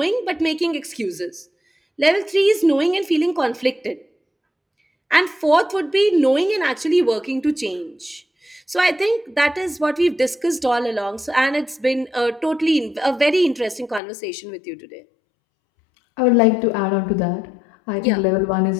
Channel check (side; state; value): right; drops out; at 14.0 s